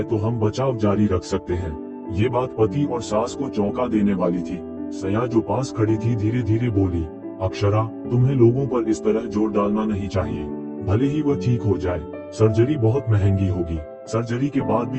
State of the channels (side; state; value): both; identical; correlation 1.00